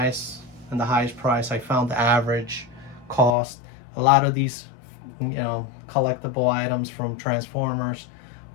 and the highest price. I found the average cost. A lot of these, you know, collectible items from Transformers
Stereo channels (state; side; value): drops out; right; at 3.4 s